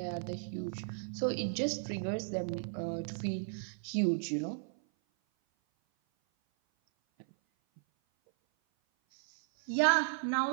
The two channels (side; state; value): left; silent; 55 dB below the other